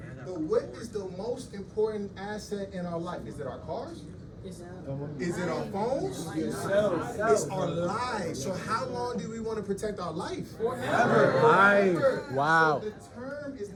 But what is the most important asset in our life? Is it our cars? Is it our phones? It's our lives. So how long do we want to protect our life? Forever. Life. Wow. So the term is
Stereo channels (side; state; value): both; identical; correlation 1.00